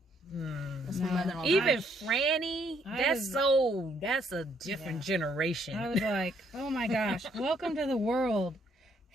That's my mother-in-law. even Franny. was- That's a different generation. I was like, oh my gosh, welcome to the world,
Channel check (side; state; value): both; normal; correlation 0.69